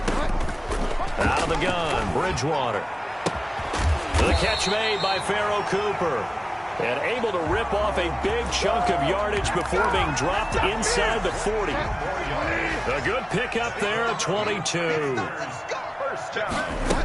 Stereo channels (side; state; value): both; identical; correlation 1.00